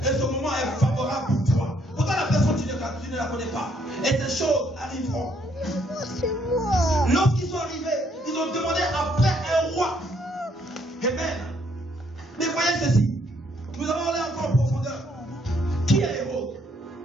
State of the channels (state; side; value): normal; both; correlation 0.69